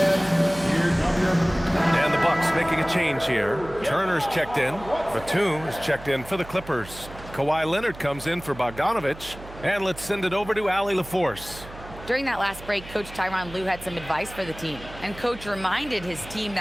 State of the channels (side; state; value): right; noise; hum, 16 dB below the sound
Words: here come your... And the Bucks making a change here. Turner's checked in. Batum is checked in for the Clippers. Kawhi Leonard comes in for Bogdanovich. And let's send it over to Allie LaForce. During that last break, Coach Tyronn Lue had some advice for the team. And Coach reminded his team